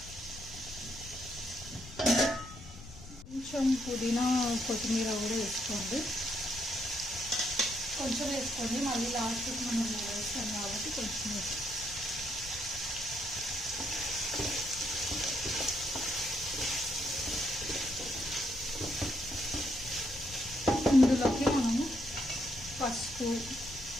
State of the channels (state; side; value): noise; left; rumble, 15 dB below the sound